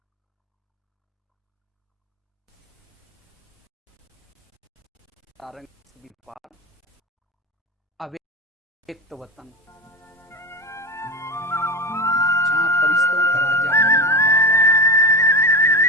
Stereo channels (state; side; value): normal; both; correlation 0.21